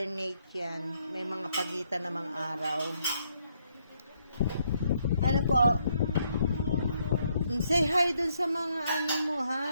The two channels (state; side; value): inverted; both; correlation -0.73